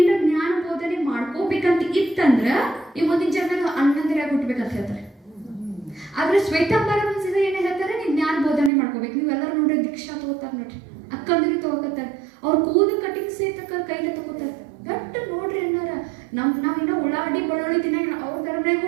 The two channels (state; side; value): drops out; left; at 8.7 s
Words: ಜ್ಞಾನ ಬೋಧನೆ ಮಾಡ್ಕೋಬೇಕಂತ ಇತ್ತಂದ್ರ ಈ ಮುಂದಿನ ಜನ್ಮದಾಗ ಅಣ್ಣಂದಿರಾಗಿ ಹುಟ್ಬೇಕಂತ ಹೇಳ್ತಾರೆ. ಆದ್ರೆ ಶ್ವೇತಾಂಬರ ಮನ್ಸಿದ ಏನ್ ಹೇಳ್ತಾರೆ, ನೀವ್ ಜ್ಞಾನ ಬೋಧನೆ ಮಾಡ್ಕೋಬೇಕು. ನೀವೆಲ್ಲರೂ ನೋಡ್ರಿ ದೀಕ್ಷಾ ತಗೋತಾರ ನೋಡ್ರಿ, ಅಕ್ಕಂದ್ರಿ ತಗೋತಾರ, ಅವ್ರ ಕೂದಲು ಕಟಿಂಗ್ ಸೇತಕ್ಕ ಕೈಲೇ ತಗೋತಾರ. ದಟ್ಟ ನೋಡ್ರಿ ಅನ್ನಾರ ನಾವಿನ್ನ ಉಳ್ಳಾಗಡ್ಡಿ ಬೆಳ್ಳುಳ್ಳಿ ತಿನ್ನಂಗಿಲ್ಲ, ಅವ್ರ ಧರ್ಮನಾಗೂ